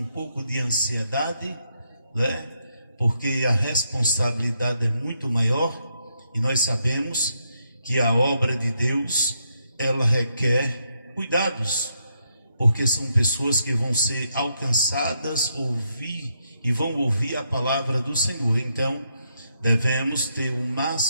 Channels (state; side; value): inverted; both; correlation -0.78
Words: pouco de ansiedade, né? Porque a responsabilidade é muito maior e nós sabemos que a obra de Deus, ela requer cuidados, porque são pessoas que vão ser alcançadas, vão ouvir a palavra do Senhor. Então, devemos ter o